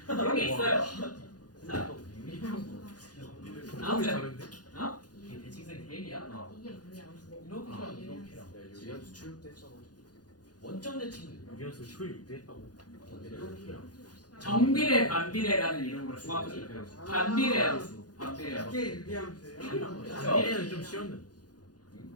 그런 게 있어요. 자, 아무튼 다른데? 이게 대칭성이 대리야? 이게 뭐야? 이렇게랑 이렇게랑. 유리함수 출입됐잖아. 원점 대칭. 유리함수 초입 했다고. 이렇게랑. 정비례, 반비례라는 이름으로 중학교 때 배웠어. 반비례 함수. 반비례 함수. 이게 유리함수예요? 반비례는 좀 쉬웠는데.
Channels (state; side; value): late; right; 0.69 ms